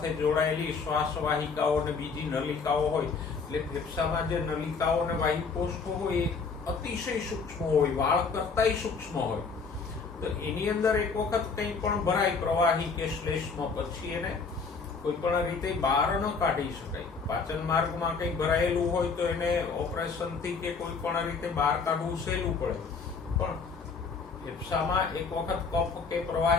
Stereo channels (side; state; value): right; quieter; 5.0 dB